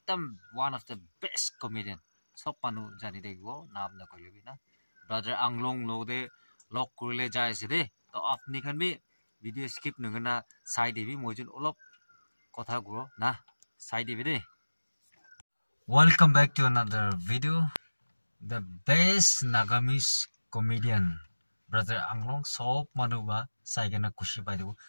one of the best comedian সব মানুহ জানি থাকিব নাম নকৰিবি না ব্ৰাদাৰ আংলং লগতে লগ কৰিলে যাই আছে দে তো আপনি খান বি ভিডিও স্কিপ নগনা চাই দিবি মই যেন অলপ কথা কৰো না চাই দিবি দে Welcome back to another video. The best Nagamese comedian, brother Anglong, sob manuba saigena kushi pai debu.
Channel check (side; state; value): both; inverted; correlation -1.00